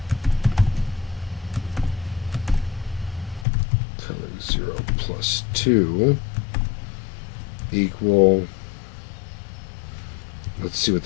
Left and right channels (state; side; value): drops out; right; at 3.5 s